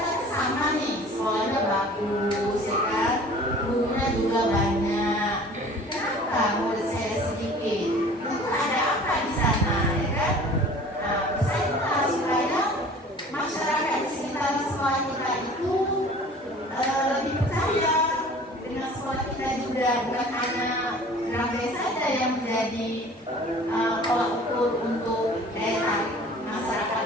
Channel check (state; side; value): normal; both; correlation 0.46